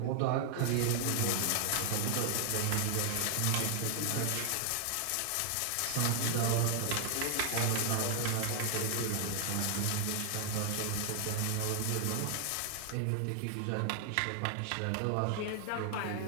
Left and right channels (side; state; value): both; different; correlation 0.00